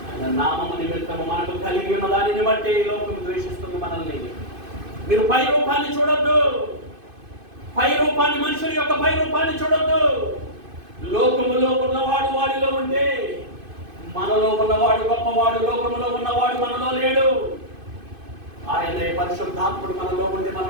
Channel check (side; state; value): left; late; 2.5 ms